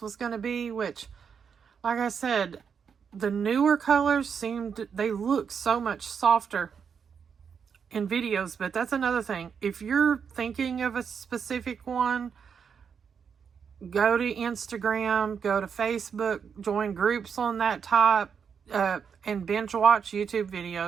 going to be, which, like I said, the newer colors they look so much softer in videos. But that's another thing. If you're thinking of a specific one, go to Instagram, go to Facebook, join groups on that type, and binge watch YouTube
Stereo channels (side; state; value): left; quieter; 6.8 dB